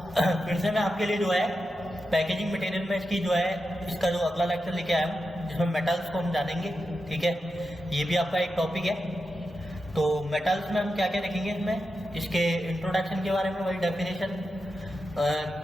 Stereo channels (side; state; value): both; normal; correlation 0.89